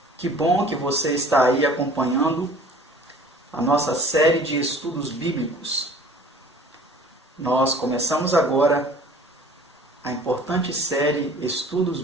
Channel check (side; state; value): both; normal; correlation 0.48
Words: Que bom que você está aí acompanhando a nossa série de estudos bíblicos. Nós começamos agora a importante série Estudos